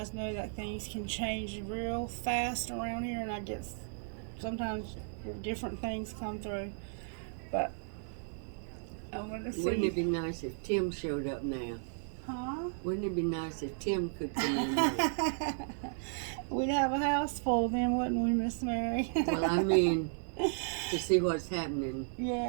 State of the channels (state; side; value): silent; left; 55 dB below the other